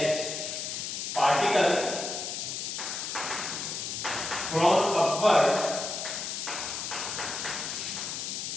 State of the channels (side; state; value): left; noise; hiss, 4 dB below the sound